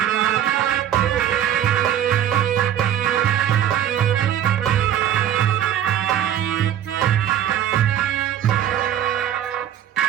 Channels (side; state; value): left; quieter; 10.7 dB